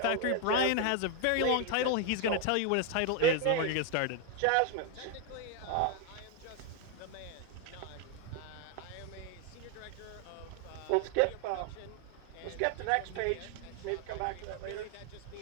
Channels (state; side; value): different; both; correlation 0.01